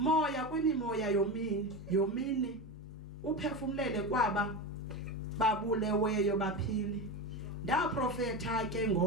kwimimoya yomini uphefumlele kwaba babuleweyo baphile. Ndaprofeta ke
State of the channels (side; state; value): both; normal; correlation 0.21